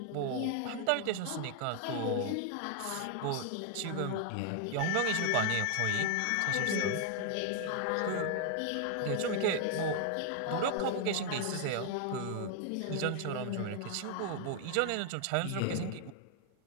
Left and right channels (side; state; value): both; different; correlation 0.00